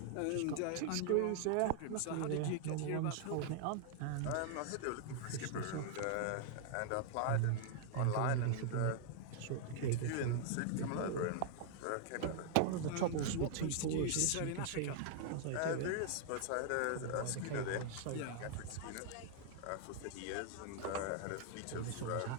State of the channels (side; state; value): both; different; correlation 0.00